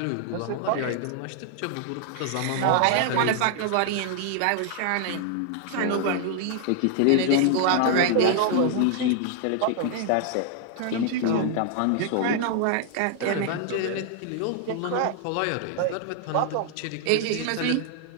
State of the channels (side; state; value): both; different; correlation 0.00